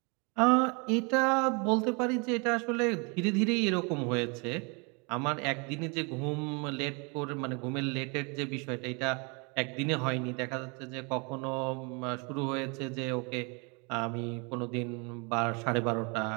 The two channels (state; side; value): quieter; left; 31.9 dB